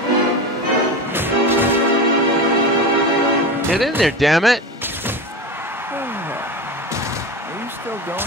Get in there, damn it! Are you still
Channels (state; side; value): normal; both; correlation 0.25